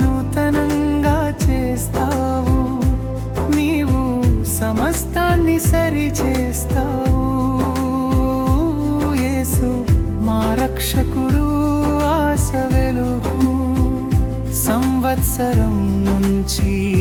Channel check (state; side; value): identical; both; correlation 1.00